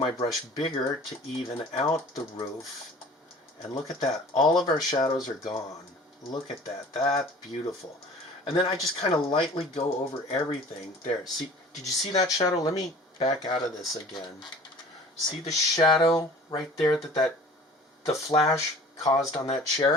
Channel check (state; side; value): normal; both; correlation 0.45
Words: brush bigger to even out the roof, and look at that, all of our shadows are gone. Look at that, that's beautiful. And then I just kind of lightly go over everything. There, see, did you see that shadow? Let me back out of this again. See the shadow right there that the flash caused on that